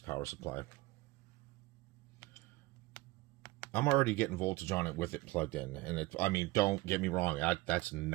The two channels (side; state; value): left; quieter; 19.9 dB